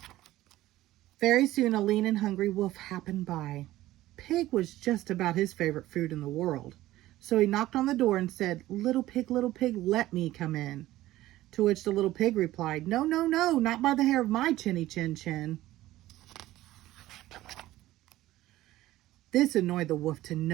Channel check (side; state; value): left; quieter; 15.8 dB